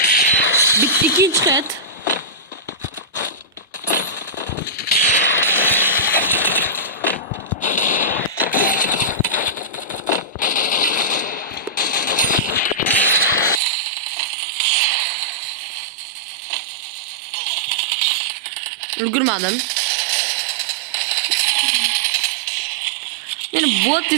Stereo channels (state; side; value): drops out; left; at 13.6 s